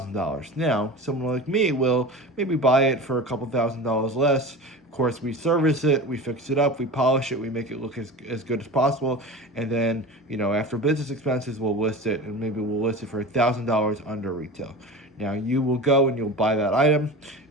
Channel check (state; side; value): normal; both; correlation 0.32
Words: Now, someone like me will maybe buy it for a couple $1,000s less. Of course, we service it, we fix it up, we polish it, we make it look as good as possible, and then, after business expenses, we'll list it, and maybe we'll list it for $1,000 under retail. Now, you will go and you'll buy that item,